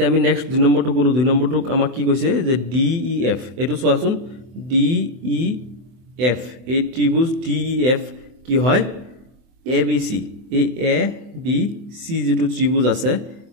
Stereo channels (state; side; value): late; left; 24 ms